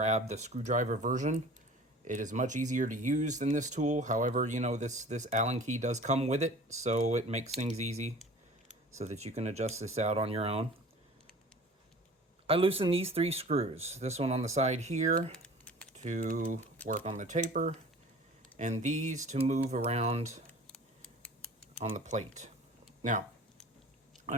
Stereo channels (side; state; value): both; normal; correlation 0.44